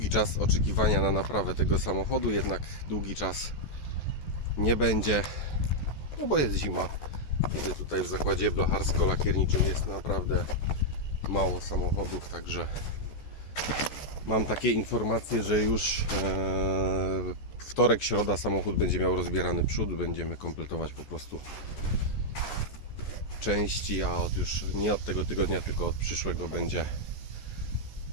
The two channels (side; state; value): right; late; 14 ms